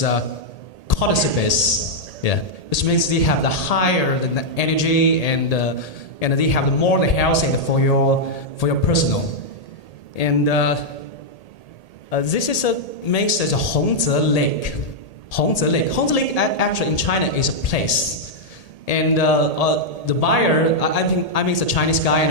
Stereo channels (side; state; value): right; late; 1.8 ms